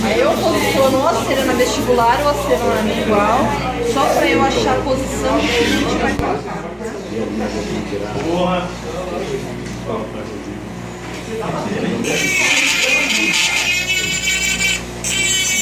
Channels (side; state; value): both; identical; correlation 1.00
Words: Aí eu posiciono ou a cera na vestibular ou a cera na igual, só pra eu achar a posição que a gente vai colocar.